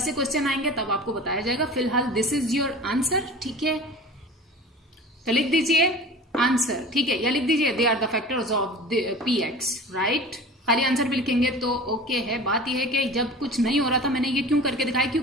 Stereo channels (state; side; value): normal; both; correlation 0.38